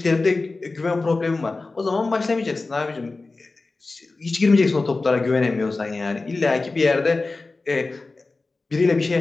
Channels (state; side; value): quieter; right; 3.5 dB